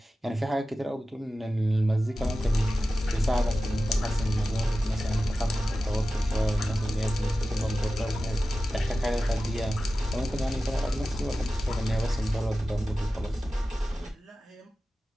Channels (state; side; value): normal; both; correlation 0.94